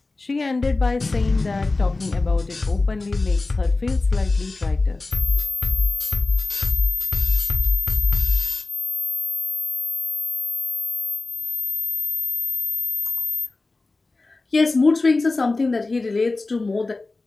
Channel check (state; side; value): quieter; right; 3.4 dB